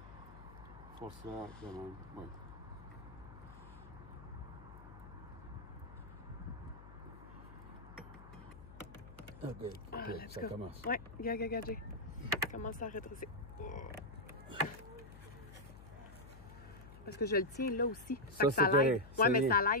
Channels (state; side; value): noise; left; hum, 16 dB below the sound